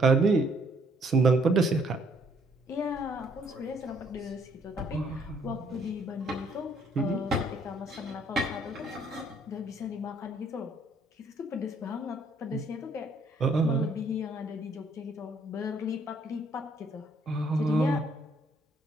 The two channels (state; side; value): normal; both; correlation 0.66